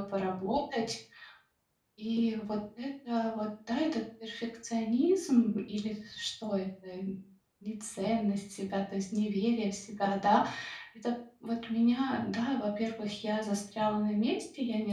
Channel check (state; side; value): identical; both; correlation 1.00